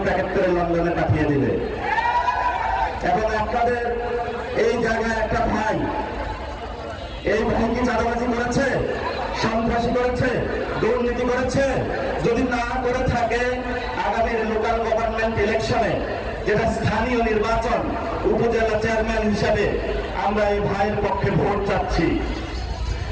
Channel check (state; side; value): identical; both; correlation 1.00